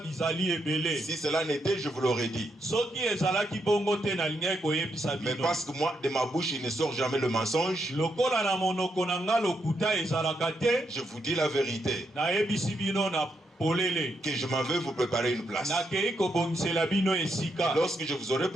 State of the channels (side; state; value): both; normal; correlation 0.80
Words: Si cela n'était, je vous l'aurais dit. Mais parce que moi, de ma bouche, il ne sort jamais le mensonge. Je vous dis la vérité. Que je m'en vais vous préparer une place. Lorsque je vous aurai